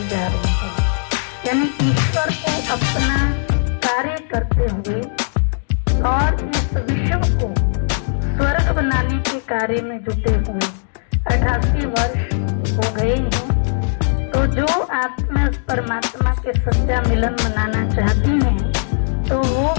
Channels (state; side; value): silent; right; digital silence